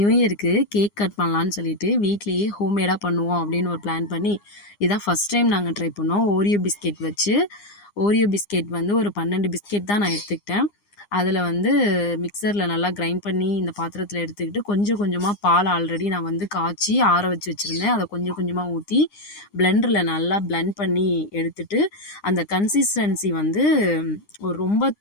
இயருக்கு cake cut பண்ணலான்னு சொல்லிட்டு வீட்லேயே ஹோம்மேடாக பண்ணுவோம் அப்படின்னு ஒரு பிளான் பண்ணி இதான் ஃபஸ்ட் டைம் நாங்கள் ட்ரை பண்ணோம். ஓரியோ பிஸ்கெட் வச்சு ஓரியோ பிஸ்கெட் வந்து ஒரு 12 பிஸ்கெட் தான் நான் எடுத்துக்கிட்டேன். அதில் வந்து மிக்சரில் நல்லா கிரைண்ட் பண்ணி இந்த பாத்திரத்தில் எடுத்துக்கிட்டு கொஞ்சம் கொஞ்சமாக பால் ஆல்ரெடி நான் வந்து காய்ச்சி ஆற வச்சு வச்சுருந்தேன். அதை கொஞ்சம் கொஞ்சமாக ஊற்றி பிளெண்டரில் நல்லா பிளெண்ட் பண்ணி எடுத்துட்டு அந்த கன்சிஸ்டன்சி வந்து ஒரு ரொம்ப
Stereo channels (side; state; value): right; late; 9.8 ms